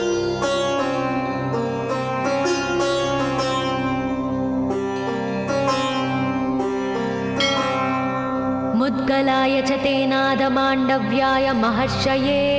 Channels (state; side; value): identical; both; correlation 1.00